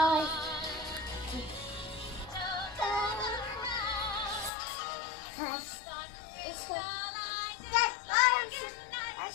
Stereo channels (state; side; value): drops out; right; at 4.5 s